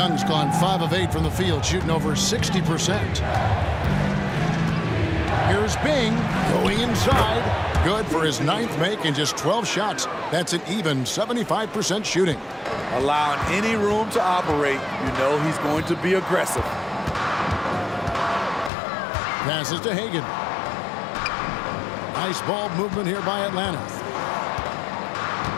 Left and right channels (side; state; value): right; drops out; at 18.7 s